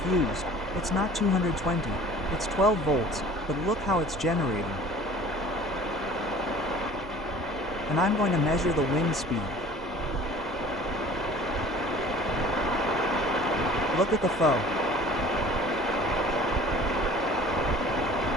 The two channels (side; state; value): both; normal; correlation 0.46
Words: it's not 220, it's 12 volts, but look how it's generating. And I'm going to measure the wind speed. Look at the foe.